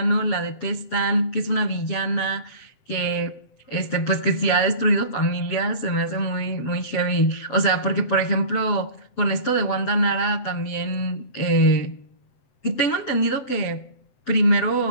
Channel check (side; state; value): right; late; 7.7 ms